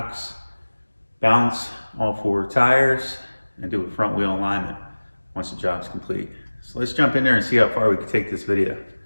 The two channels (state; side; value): inverted; both; correlation -1.00